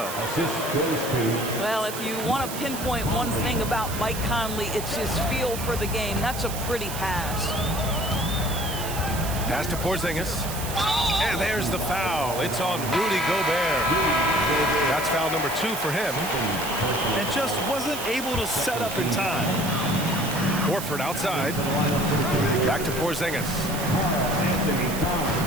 Assist goes to. Well, if you want to pinpoint one thing about Mike Conley, it's his feel for the game. That's a pretty pass. Pass to Porzingis. And there's the foul. It's on Rudy Gobert. That's foul number 2 for him. And just wasn't able to set up in time. Horford outside. Back to Porzingis.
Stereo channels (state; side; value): noise; right; hiss, 8 dB below the sound